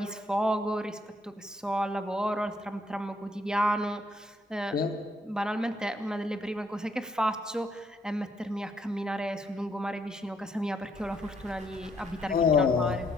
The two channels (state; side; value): normal; both; correlation 0.71